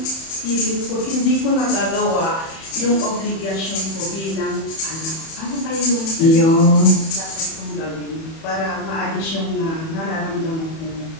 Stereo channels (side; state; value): right; late; 31 ms